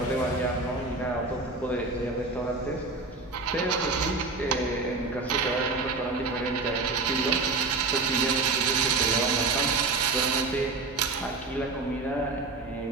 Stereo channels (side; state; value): left; quieter; 3.7 dB